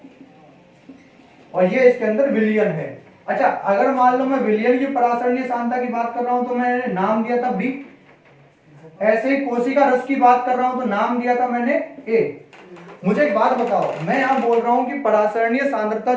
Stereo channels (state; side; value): identical; both; correlation 1.00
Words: और ये इसके अंदर विलयन है। अच्छा, अगर मान लो मैं विलयन की परासरणीय सांद्रता की बात कर रहा हूं तो मैंने नाम दिया था B, ऐसे ही कोशिका रस की बात कर रहा हूं तो नाम दिया था मैंने A। मुझे एक बात बताओ, मैं यहां बोल रहा हूं कि परासरणीय सांद्रता